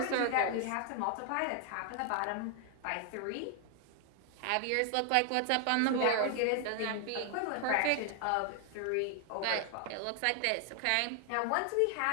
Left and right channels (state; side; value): different; both; correlation 0.00